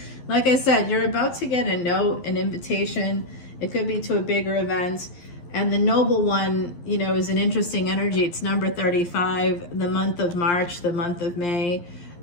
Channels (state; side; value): late; right; 11 ms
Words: Like I said, you're about to get a note, an invitation. It could be to a bigger event. And the noble one, you know, is an interesting energy. It's number 35, the month of March, the month of May.